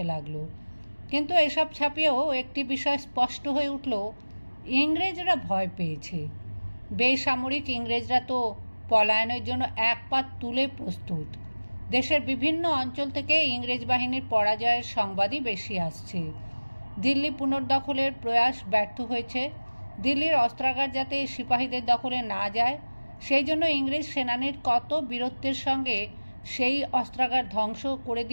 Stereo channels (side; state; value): both; inverted; correlation -1.00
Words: লাগলো। কিন্তু এসব ছাপিয়েও একটি বিষয় স্পষ্ট হয়ে উঠল, ইংরেজরা ভয় পেয়েছে। বেসামরিক ইংরেজরা তো পলায়নের জন্য এক পা তুলে প্রস্তুত। দেশের বিভিন্ন অঞ্চল থেকে ইংরেজ বাহিনীর পরাজয়ের সংবাদই বেশি আসছে। দিল্লি পুনর্দখলের প্রয়াস ব্যর্থ হয়েছে। দিল্লির অস্ত্রাগার যাতে সিপাহীদের দখলে না যায়, সেই জন্য ইংরেজ সেনানীর কত বীরত্বের সঙ্গে সেই অস্ত্রাগার ধ্বংস করে